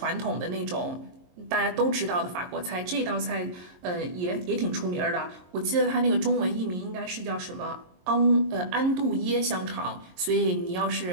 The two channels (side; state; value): left; late; 22 ms